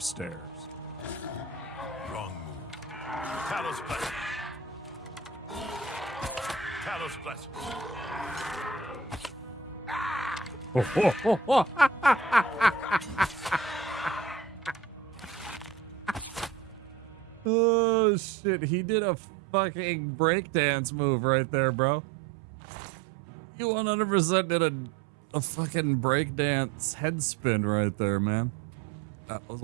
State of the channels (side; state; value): left; drops out; at 17.5 s